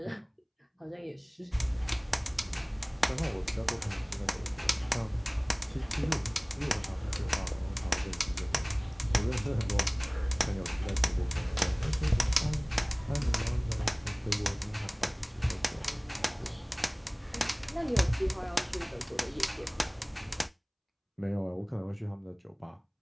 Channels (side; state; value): both; identical; correlation 1.00